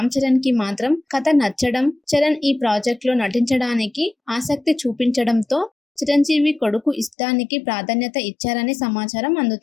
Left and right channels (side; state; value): right; drops out; at 7.2 s